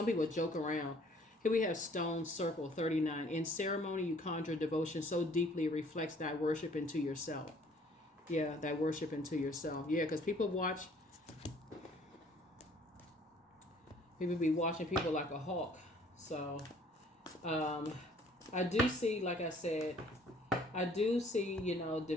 people joke around. Here we have Stone Circle 39. In ceremony, you conjure devotion so deeply it reflects thy worship into yourself. Yeah, thy worship into yourself. Yeah, because people be watching people like a hawk. So I do see, like I said,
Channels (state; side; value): normal; both; correlation 0.57